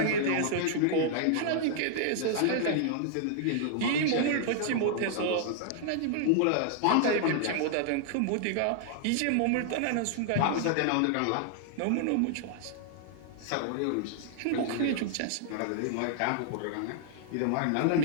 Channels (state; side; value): different; both; correlation -0.01